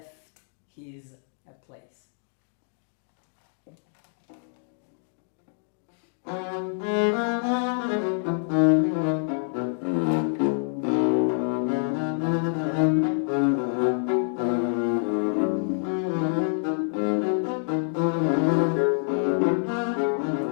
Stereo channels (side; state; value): right; silent; digital silence